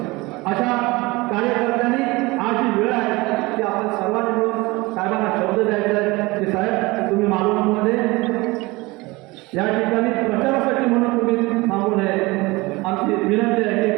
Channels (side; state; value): left; quieter; 22.7 dB